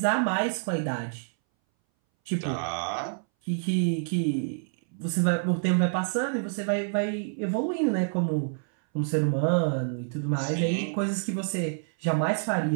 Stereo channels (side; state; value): left; silent; 60 dB below the other